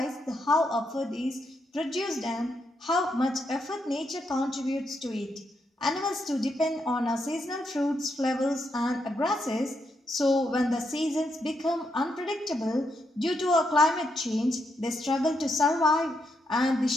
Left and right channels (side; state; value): both; normal; correlation 0.80